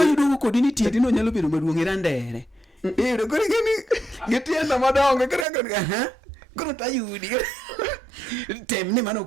yudo kodini tieti no nyalo bedo maduong' irandere. Kore gitienda madongo koro tayudi tem ni mano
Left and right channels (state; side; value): drops out; left; at 5.5 s